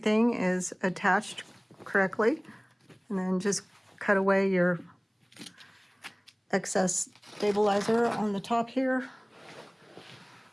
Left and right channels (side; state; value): both; identical; correlation 1.00